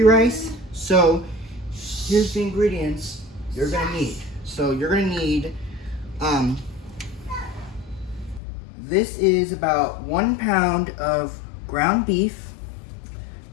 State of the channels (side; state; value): right; drops out; at 8.4 s